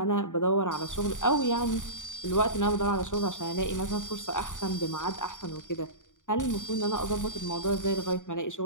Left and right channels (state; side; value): late; right; 0.87 ms